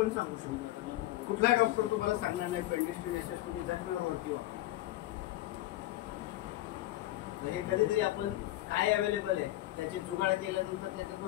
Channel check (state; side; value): quieter; right; 15.9 dB